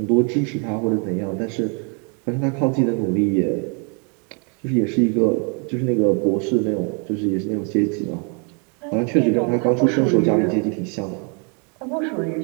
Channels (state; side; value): quieter; left; 36.9 dB